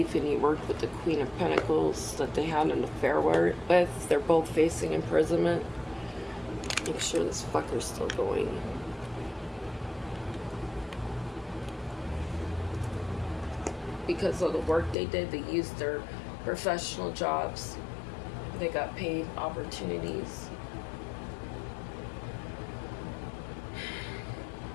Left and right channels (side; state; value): right; drops out; at 15.0 s